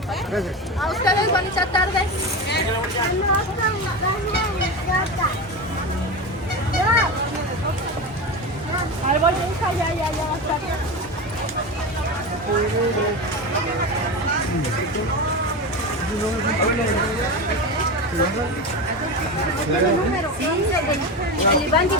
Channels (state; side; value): normal; both; correlation 0.22